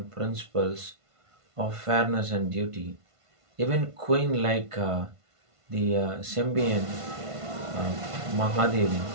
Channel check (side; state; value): left; late; 1.5 ms